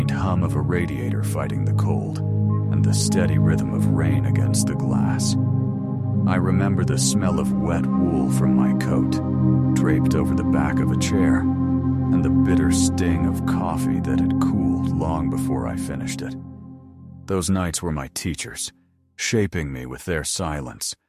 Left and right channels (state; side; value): identical; both; correlation 1.00